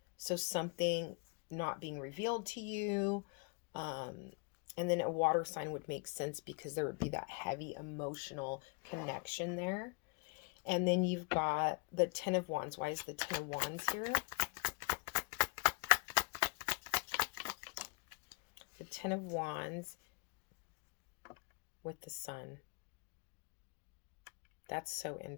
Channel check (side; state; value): right; quieter; 30.3 dB